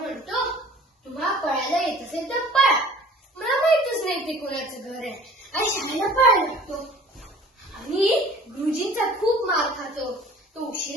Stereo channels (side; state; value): both; normal; correlation 0.48